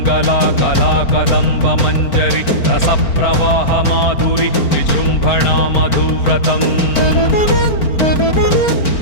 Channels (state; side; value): late; right; 4.4 ms